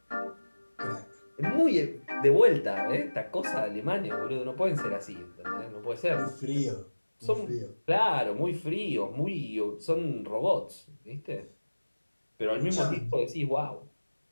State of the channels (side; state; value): both; inverted; correlation -1.00